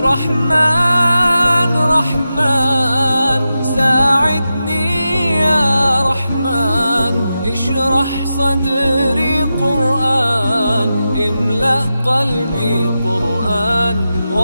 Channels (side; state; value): both; inverted; correlation -0.91